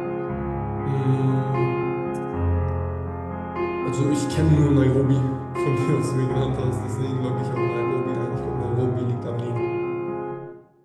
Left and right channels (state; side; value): identical; both; correlation 1.00